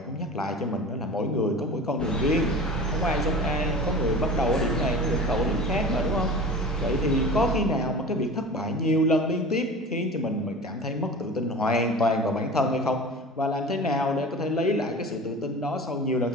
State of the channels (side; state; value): both; normal; correlation 0.36